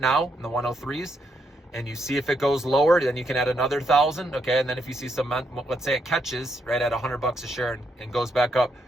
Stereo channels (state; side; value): normal; both; correlation 0.78